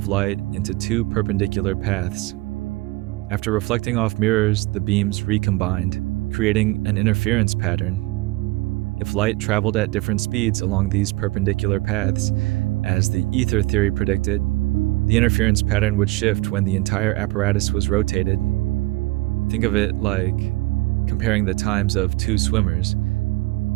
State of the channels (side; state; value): left; quieter; 20.8 dB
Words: light into two perpendicular paths. After reflecting off mirrors, the beams recombined, creating an interference pattern. If light traveled at different speeds along these perpendicular paths, as the ether theory predicted, the interference pattern would shift when the entire apparatus was rotated. Think of it like comparing the times of two swimmers,